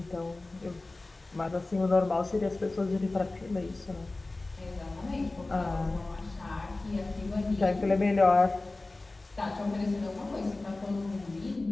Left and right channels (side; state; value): right; quieter; 3.1 dB